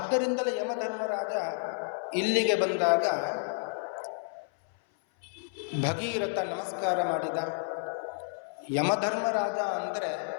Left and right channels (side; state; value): right; silent; 57 dB below the other